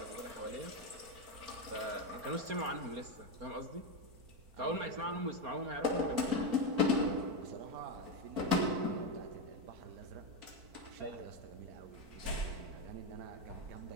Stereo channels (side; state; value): left; late; 4.5 ms